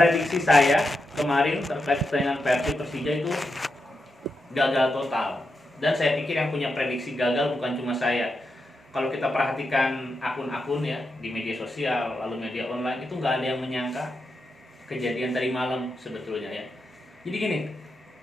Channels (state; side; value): normal; both; correlation 0.86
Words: saya kemarin terkait pertandingan Persib Persija itu gagal total. Dan saya pikir yang punya prediksi gagal bukan cuma saya. Kalau kita perhatikan akun-akun ya di media sosial lalu media online itu nggak ada yang menyangka kejadian tadi malam sebetulnya ya. Jadi gini,